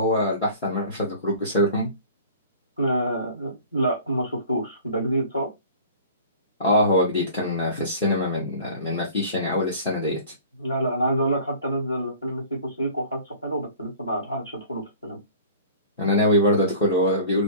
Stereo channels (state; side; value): inverted; both; correlation -0.44